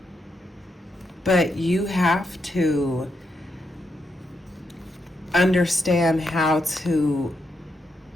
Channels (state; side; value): normal; both; correlation 0.82